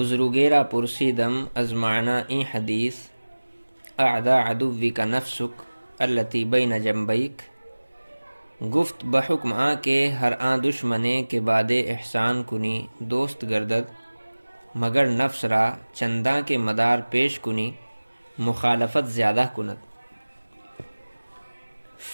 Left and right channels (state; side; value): inverted; both; correlation -1.00